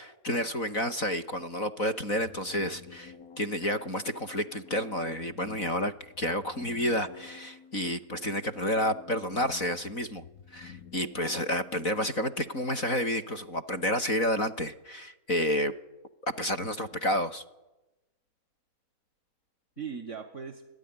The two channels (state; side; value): late; right; 4.0 ms